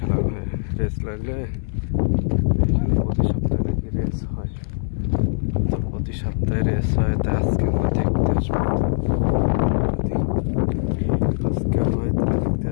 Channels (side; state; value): right; silent; 64 dB below the other